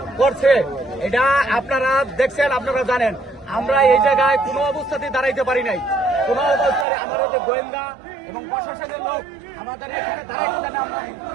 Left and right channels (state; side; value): drops out; left; at 6.9 s